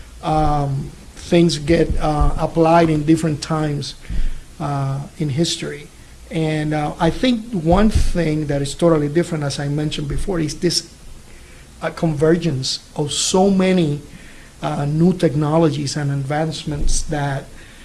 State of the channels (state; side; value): identical; both; correlation 1.00